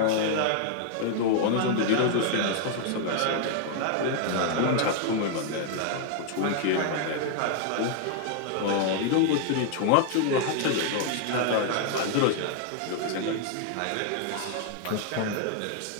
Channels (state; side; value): different; both; correlation 0.00